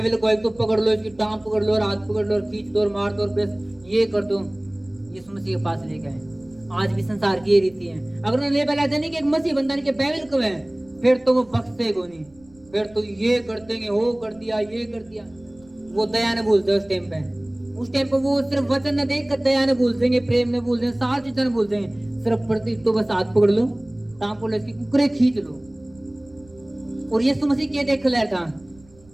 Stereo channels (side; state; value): right; noise; rumble, 28 dB below the sound